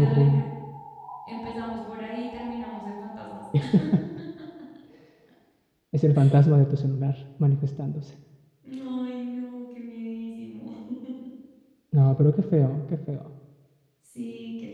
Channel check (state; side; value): identical; both; correlation 1.00